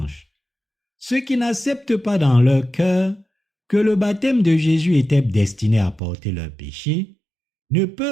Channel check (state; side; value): drops out; left; at 6.0 s